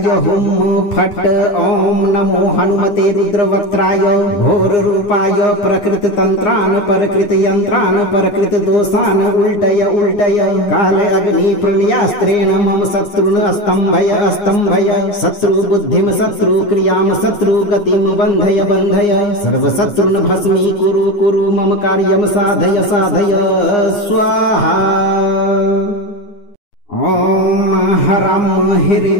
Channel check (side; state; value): right; late; 9.8 ms